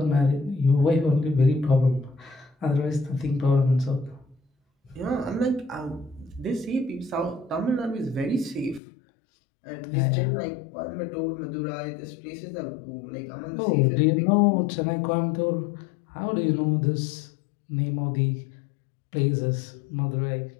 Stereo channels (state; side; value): drops out; right; at 8.8 s